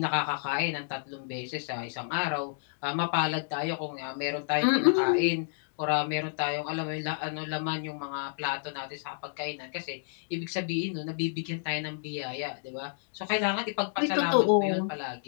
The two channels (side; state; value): right; silent; digital silence